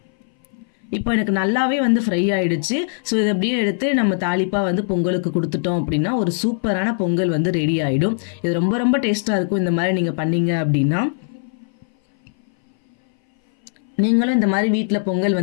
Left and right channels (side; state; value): right; silent; 60 dB below the other